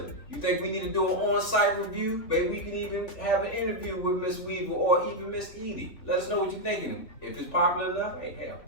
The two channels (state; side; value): late; right; 3.5 ms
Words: You think we need to do an on-site review? Maybe we can even have an interview with Miss Weaver or even Miss Edie. Let us know what you're thinking. If it's popular enough, hey, hell,